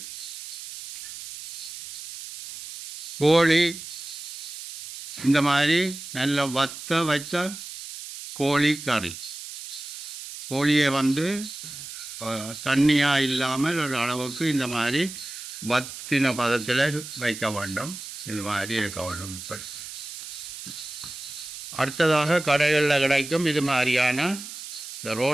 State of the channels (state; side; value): noise; right; hiss, 10 dB below the sound